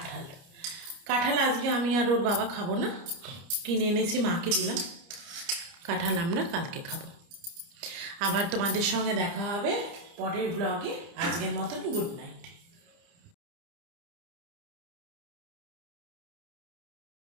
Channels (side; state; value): left; late; 30 ms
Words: কাঁঠাল আজকে আমি আর ওর বাবা খাবো না, কিনে এনেছি, মাকে দিলাম। কাঁঠাল আমরা কালকে খাবো। আবার তোমাদের সঙ্গে দেখা হবে পরের ব্লগে। আজকের মতন গুড নাইট।